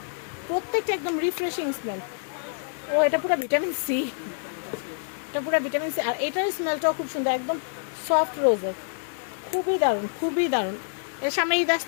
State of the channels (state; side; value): silent; right; digital silence